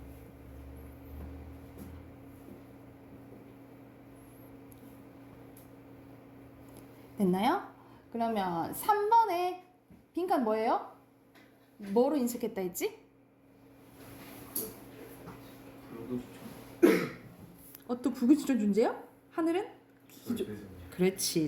됐나요? 그러면 3번에 빈칸 뭐예요? 뭐로 인식했다 했지? 또 불구지적 존재요? 하늘은?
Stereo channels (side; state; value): both; identical; correlation 1.00